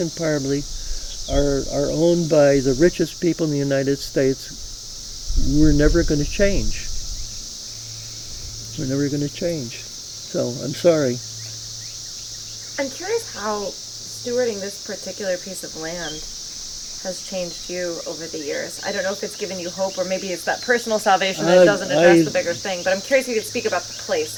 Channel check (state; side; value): identical; both; correlation 1.00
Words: Party are owned by the richest people in the United States, we're never going to change. We're never going to change. So I'm sorry. I'm curious how stewarding this particular piece of land has changed you over the years. I don't know if it's given you hope, or maybe it's that personal salvation that doesn't address the bigger thing, but I'm curious if you could speak about the place